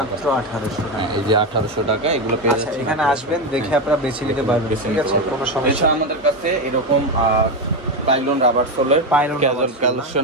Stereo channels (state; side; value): normal; both; correlation 0.12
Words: 1800 টাকা, এই যে 1800 টাকা, এগুলো পেয়ে যাচ্ছেন। এখানে আসবেন, দেখে আপনারা বেছে নিতে পারবেন, ঠিক আছে, কোনো সমস্যা। আমাদের কাছে এরকম পাইলন রাবার সোলের ক্যাজুয়াল